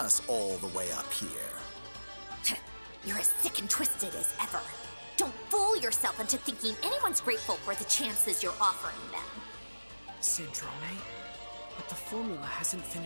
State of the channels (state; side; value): inverted; both; correlation -1.00